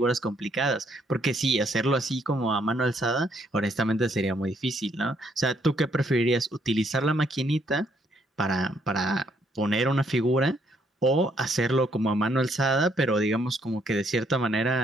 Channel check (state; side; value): normal; both; correlation 0.70